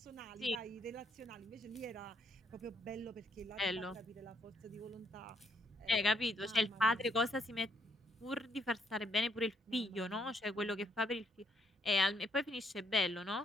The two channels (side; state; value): both; normal; correlation 0.71